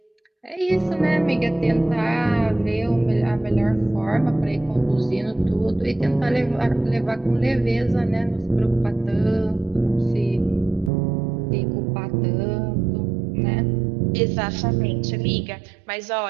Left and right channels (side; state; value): left; drops out; at 10.9 s